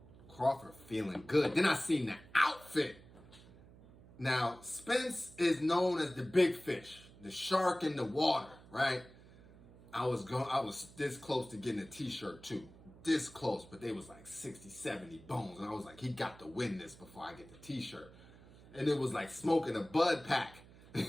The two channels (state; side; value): noise; right; hum, 21 dB below the sound